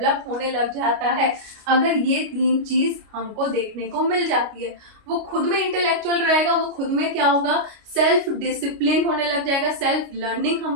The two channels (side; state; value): left; late; 29 ms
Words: होने लग जाता है अगर ये तीन चीज हमको देखने को मिल जाती है। वो खुद में इंटेलेक्चुअल रहेगा, वो खुद में क्या होगा, सेल्फ डिसिप्लिन होने लग जाएगा, सेल्फ लर्निंग